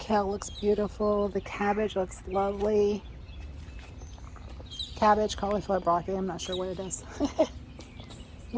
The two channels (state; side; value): identical; both; correlation 1.00